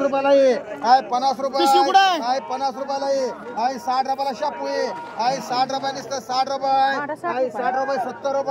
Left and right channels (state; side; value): identical; both; correlation 1.00